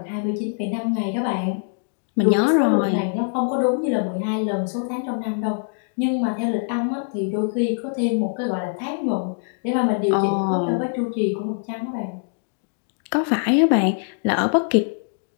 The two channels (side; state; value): right; silent; digital silence